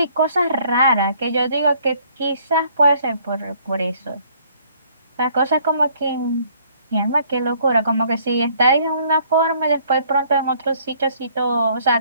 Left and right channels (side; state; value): both; inverted; correlation -0.61